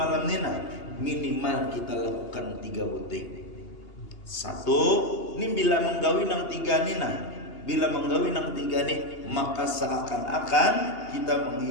nina, minimal kita lakukan 3 buting. 1, ini bila menggawi nang 3 nina. Bila menggawi nang 3 nih, maka seakan-akan kita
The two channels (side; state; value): right; late; 2.8 ms